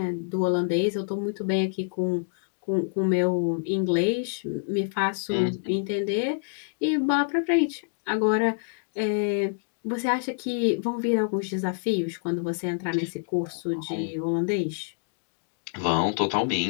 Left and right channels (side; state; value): right; silent; digital silence